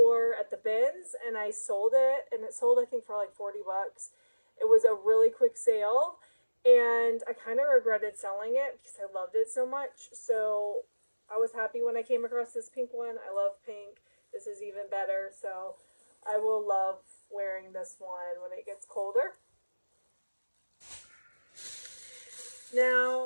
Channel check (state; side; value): inverted; both; correlation -1.00